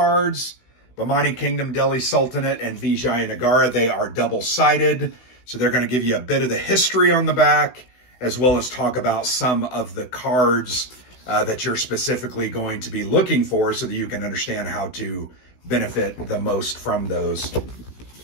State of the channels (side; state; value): right; late; 16 ms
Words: Bahmani Kingdom, Delhi Sultanate, and Vijayanagara. They are double-sided, so they're going to give you a bit of the history on the back, as well as talk about some of the cards that you're specifically going to be looking for so that you can understand how to benefit the most from those.